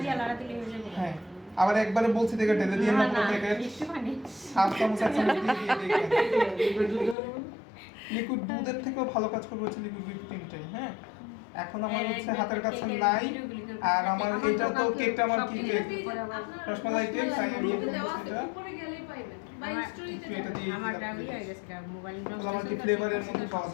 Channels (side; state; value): right; drops out; at 7.2 s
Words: দিয়ে লাড়া দিলে হয়ে যাবে। হ্যাঁ, আবার একবারে বলছি দেখে ঢেলে দিয়ে না পুরো থেকে হাফ চামচ দিয়ে লিকুইড দুধের থেকেও ভালো কাজ করবে হচ্ছে লিকুইড হুইপ ক্রিমটাই, হ্যাঁ। এখন আমার হচ্ছে হাতের কাছে নাই, আর আমার এটা তো কেকটা আমার কি কেক রসমালাই কেক, তাই আমি এটা উপরে গেলেই পাইবেন বা স্টোরিতে এটা দিয়ে আমারটা হয়ে গেছে মোবাইল নষ্ট আমার কি ফ্লেভারের মধ্যে পাওয়া